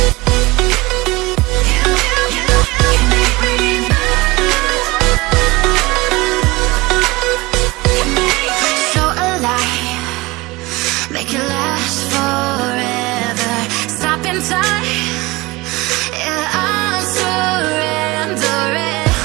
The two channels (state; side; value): quieter; left; 22.0 dB